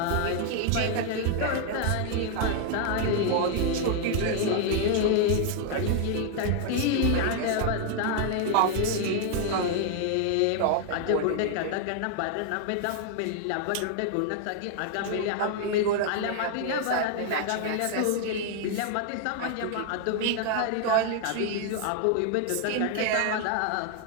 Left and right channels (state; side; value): different; both; correlation 0.00